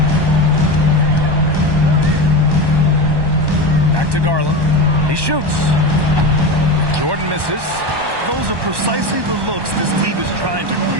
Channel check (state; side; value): late; left; 1.1 ms